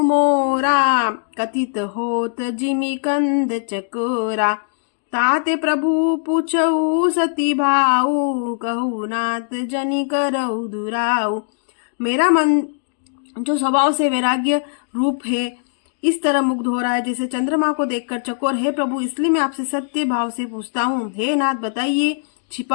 मोरा, कथित होत जिमि कंद चकोरा, ताते प्रभु पूछऊ सती भाऊ, कहू नाथ जनि करऊ दुराऊ। मेरा मन जो स्वभाव से वैराग्य रूप है इस तरह मुग्ध हो रहा है जैसे चंद्रमा को देखकर चकोर। हे प्रभु, इसलिए मैं आपसे सत्य भाव से पूछता हूँ। हे नाथ, बताइए,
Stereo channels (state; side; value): silent; right; digital silence